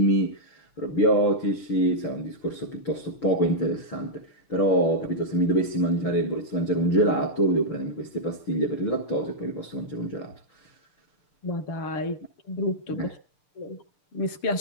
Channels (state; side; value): late; right; 6.7 ms